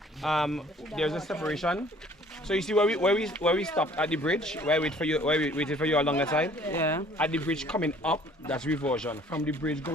there's a separation. So you see where we stopped at the bridge, where we waited for you along the side. Yeah. At the bridge coming up, that's Reversion. From the bridge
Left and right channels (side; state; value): both; normal; correlation 0.55